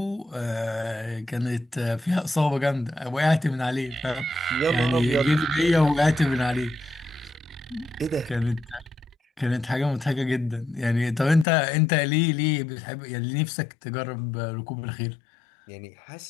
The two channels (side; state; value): right; drops out; at 11.5 s